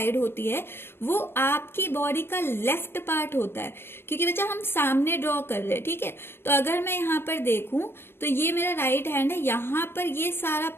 होती है, वो आपकी बॉडी का लेफ्ट पार्ट होता है, क्योंकि बच्चा हम सामने ड्रॉ कर रहे हैं, ठीक है. तो अगर मैं यहाँ पर देखूं तो ये मेरा राइट हैंड है, यहाँ पर ये सारा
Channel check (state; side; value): late; right; 0.11 ms